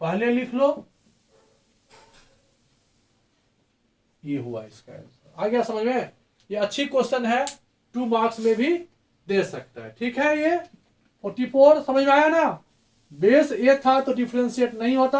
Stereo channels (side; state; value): both; identical; correlation 1.00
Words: लिख लो। ये हुआ इसका आंसर। आ गया समझ में? ये अच्छी क्वेश्चन है, 2 मार्क्स में भी दे सकता है। ठीक है, ये 44 समझ में आया ना। बेस ए था तो डिफरेंशिएट नहीं होता,